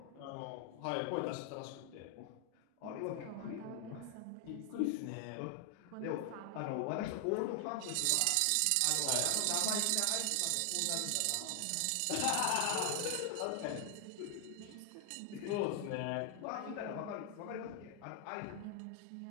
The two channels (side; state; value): both; different; correlation 0.00